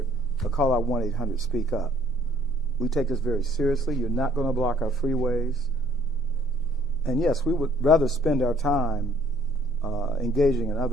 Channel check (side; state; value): both; normal; correlation 0.61